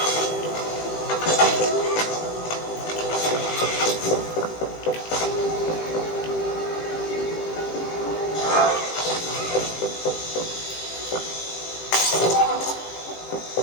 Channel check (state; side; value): late; right; 18 ms